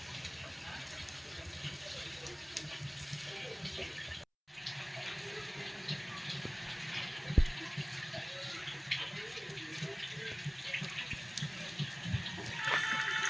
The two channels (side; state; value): both; identical; correlation 1.00